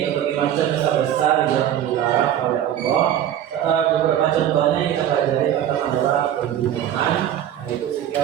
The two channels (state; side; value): quieter; left; 10.8 dB